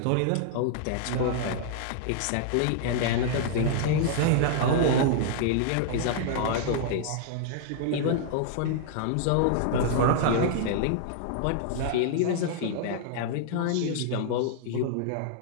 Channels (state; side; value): different; both; correlation -0.01